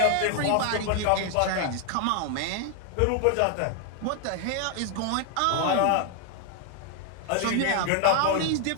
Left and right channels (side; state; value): both; different; correlation 0.01